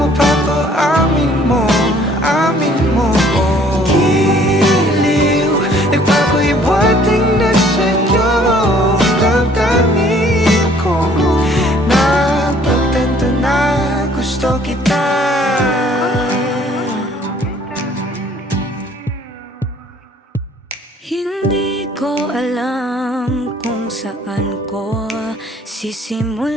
mapapaamin mo, amin mo. Giliw, nagpapahiwating na sa'yo ang damdamin ko. Napagtanto na gusto kita. Hindi ko alam kung saan ko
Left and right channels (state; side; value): normal; both; correlation 0.58